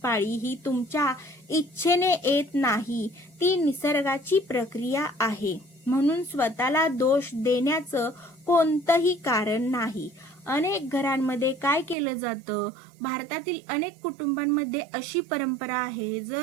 पाळी ही तुमच्या इच्छेने येत नाही, ती निसर्गाची प्रक्रिया आहे. म्हणून स्वतःला दोष देण्याचं कोणतंही कारण नाही. अनेक घरांमध्ये काय केलं जातं, भारतातील अनेक कुटुंबांमध्ये अशी परंपरा आहे,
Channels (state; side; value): drops out; left; at 12.0 s